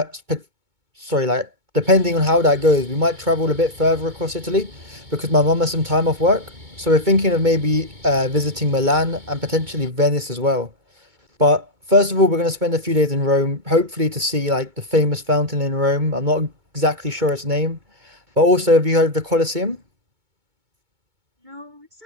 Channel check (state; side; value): late; left; 2.2 ms